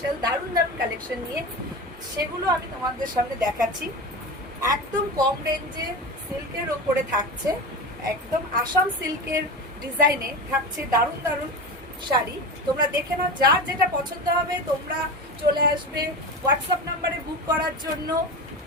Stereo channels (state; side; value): normal; both; correlation 0.26